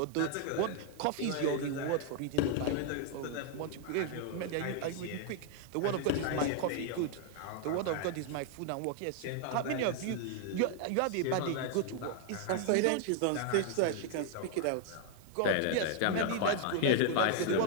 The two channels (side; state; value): both; different; correlation 0.00